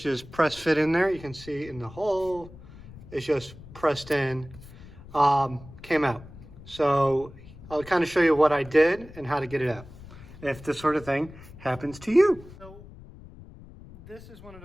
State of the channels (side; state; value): left; noise; rumble, 18 dB below the sound